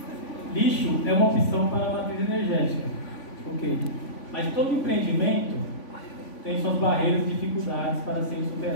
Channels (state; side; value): late; right; 3.5 ms